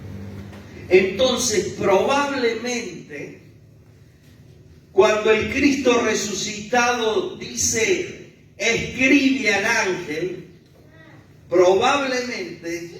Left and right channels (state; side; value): identical; both; correlation 1.00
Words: Entonces, probablemente, cuando el Cristo resucitado dice, escribe al ángel,